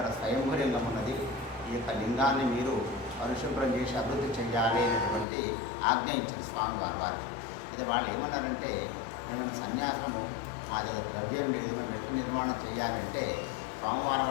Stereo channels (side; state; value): right; drops out; at 5.2 s